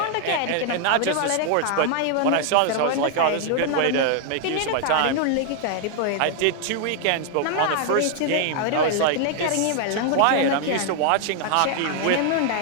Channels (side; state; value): both; different; correlation 0.00